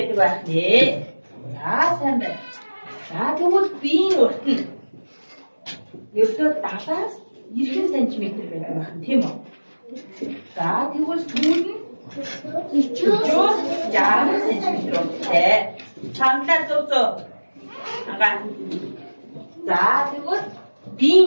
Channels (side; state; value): both; inverted; correlation -1.00